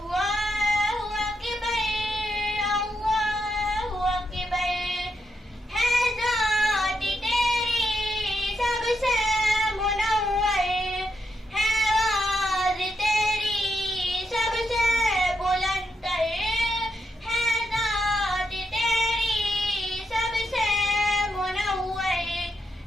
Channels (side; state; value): both; normal; correlation 0.82